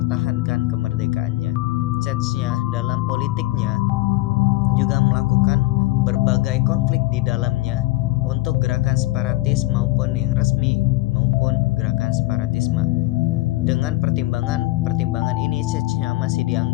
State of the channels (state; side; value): quieter; right; 18.8 dB